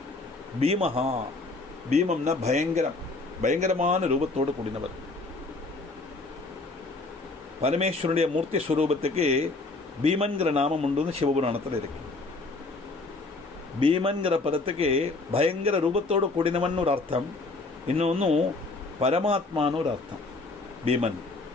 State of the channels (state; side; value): quieter; right; 3.3 dB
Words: பீமஹா, பீமம்னா பயங்கரம், பயங்கரமான ரூபத்தோடு கூடினவர். பரமேஸ்வரனுடைய மூர்த்தி ஸ்வரூபத்துக்கு பீமன்கிற நாமம் உண்டு, சிவபுராணத்தில் இருக்கு. பீமன்கிற பதத்துக்கு பயங்கர ரூபத்தோடு கூடினவன் ஒரு அர்த்தம், இன்னொன்னு பரமாத்மான்னு ஒரு அர்த்தம். பீமன்